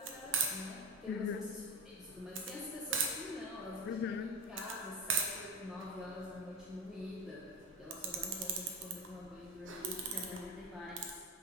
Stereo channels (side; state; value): both; normal; correlation 0.21